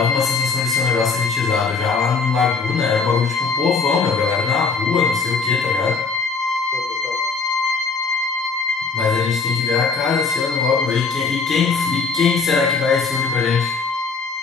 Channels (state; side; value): quieter; right; 4.7 dB